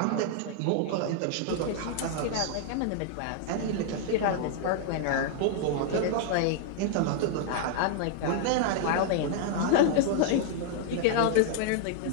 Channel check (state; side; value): different; both; correlation -0.01